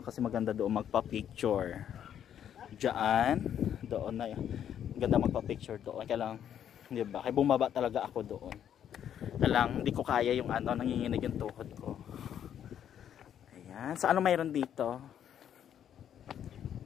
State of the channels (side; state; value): right; quieter; 9.6 dB